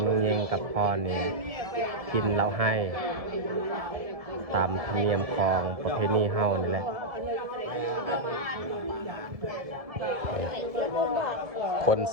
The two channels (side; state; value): left; late; 1.7 ms